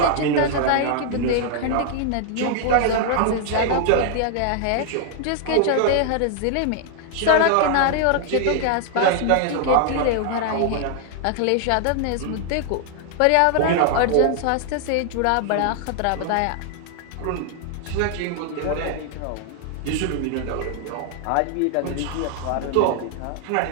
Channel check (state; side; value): different; both; correlation 0.00